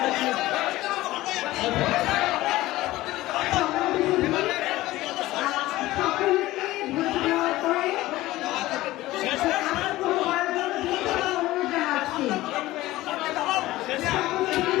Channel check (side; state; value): right; quieter; 17.2 dB